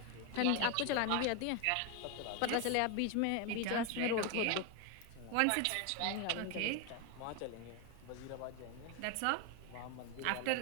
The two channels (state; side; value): different; both; correlation 0.01